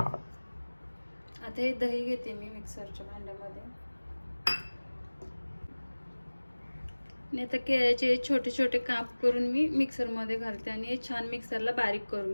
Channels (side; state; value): both; inverted; correlation -1.00